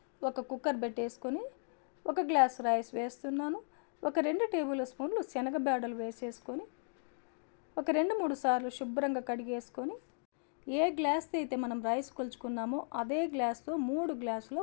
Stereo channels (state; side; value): silent; right; digital silence